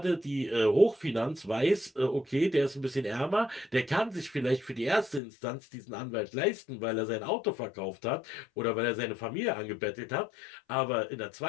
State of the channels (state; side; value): drops out; right; at 5.2 s